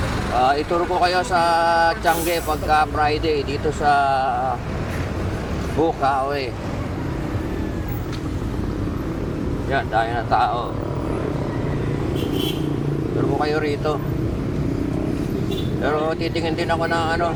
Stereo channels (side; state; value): both; identical; correlation 1.00